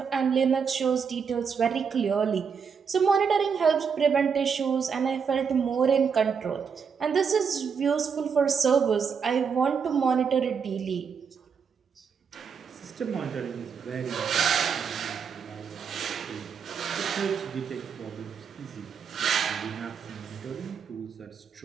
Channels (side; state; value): left; quieter; 6.4 dB